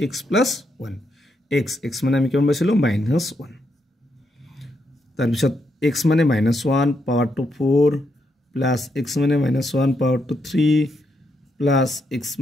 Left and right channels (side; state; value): both; normal; correlation 0.80